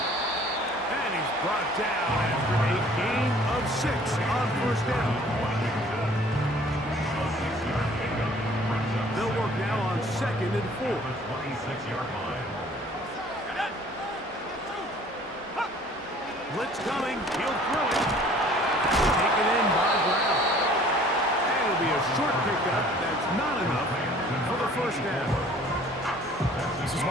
he's brought down after a gain of 6 on first down. They'll work now on 2nd and 4. 26-yard line. Blitz coming. He'll throw it. Taken in by Brown. And it'll be a short pickup. That's not enough for the first down. This is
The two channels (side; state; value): both; normal; correlation 0.53